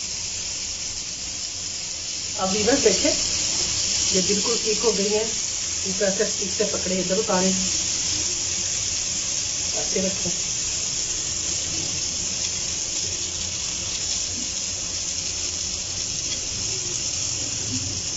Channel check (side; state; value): both; identical; correlation 1.00